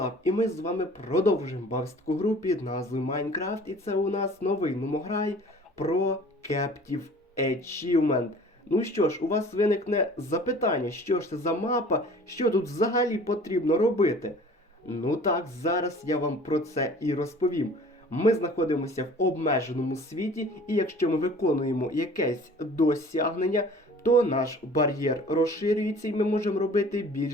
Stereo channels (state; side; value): normal; both; correlation 0.47